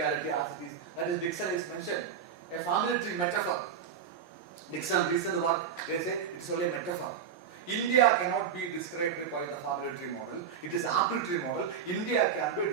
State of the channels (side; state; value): left; quieter; 7.5 dB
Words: as it is. That is, Dixon is mentioned. A family tree metaphor. Dixon recent work, they say it is only a metaphor. India cannot be described by the family tree model. It is apple tree model. India can be